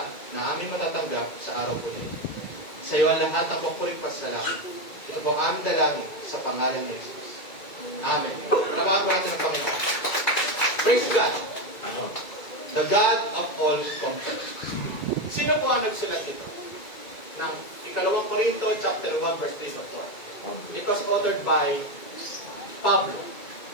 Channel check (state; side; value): late; right; 2.3 ms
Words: na aming matatanggap sa araw po nito. Sa iyo ang lahat ang papuring pasalamat. Ito po ang aming dalangin sa pangalan ni Jesus. Amen. Palawakan po natin ang Panginoon. Praise God. The God of all comfort. Sino po ang nagsulat ito? Ng Ikalawang Korinto, chapter 1, verse 3 to 4. It was authored by Pablo,